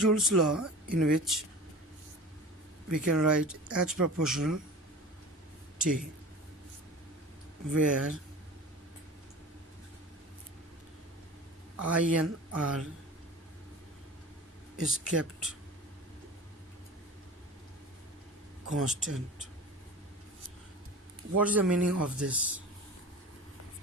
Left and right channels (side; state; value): both; normal; correlation 0.37